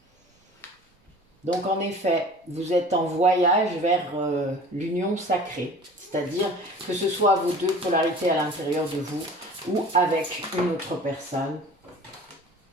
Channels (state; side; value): normal; both; correlation 0.43